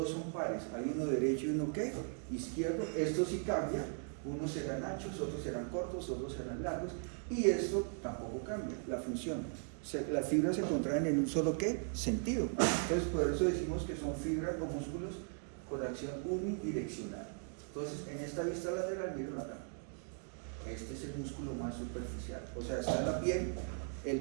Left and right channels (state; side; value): silent; left; 52 dB below the other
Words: son pares, hay uno derecho y uno ¿qué? Izquierdo. Esto sí cambia, unos serán anchos, otros serán cortos, otros serán largos, y esto tampoco cambia, la función. Las fibras se contraen en un solo ¿qué? Sentido. Entonces por eso decimos que son fibras o músculos con acción unidireccional. Entonces en esta vista lateral, miren acá, este es el músculo más superficial, o sea, está en la piel,